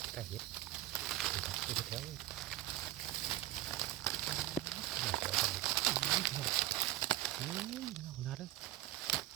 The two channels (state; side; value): quieter; left; 15.2 dB